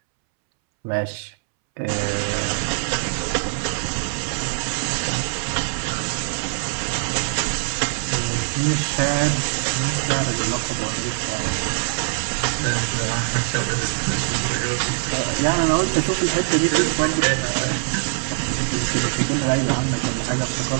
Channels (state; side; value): silent; left; 64 dB below the other